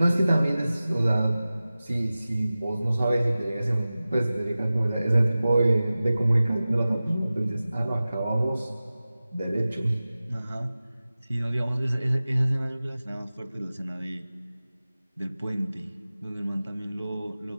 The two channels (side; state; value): both; inverted; correlation -0.96